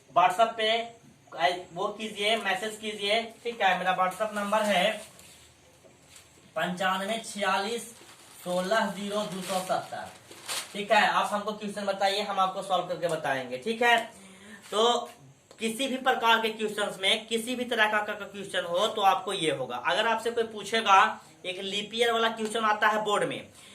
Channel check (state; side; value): identical; both; correlation 1.00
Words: व्हाट्सएप पे वो कीजिए, मैसेज कीजिए। ठीक है, मेरा व्हाट्सएप नंबर है 9546160270। ठीक है, आप हमको क्वेश्चन बताइए, हम आपको सॉल्व करके बताएंगे। ठीक है, तो किसी भी प्रकार के क्वेश्चंस में किसी भी तरह का क्वेश्चन हो तो आपको ये होगा। अगर आपसे कोई पूछेगा, एक लीप ईयर वाला क्वेश्चन आता है बोर्ड में